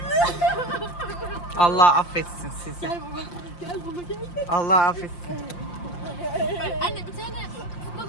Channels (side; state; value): right; late; 5.7 ms